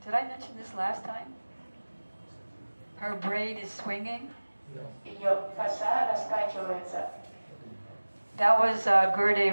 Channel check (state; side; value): inverted; both; correlation -1.00